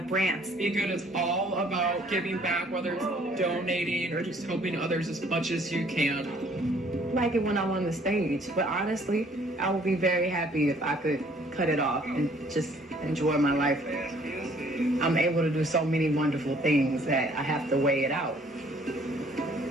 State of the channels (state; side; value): normal; both; correlation 0.60